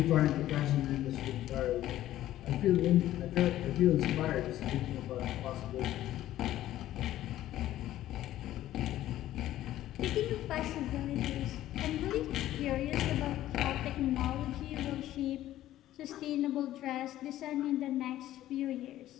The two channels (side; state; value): right; quieter; 13.7 dB